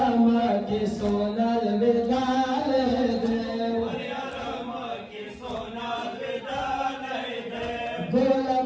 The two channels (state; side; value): identical; both; correlation 1.00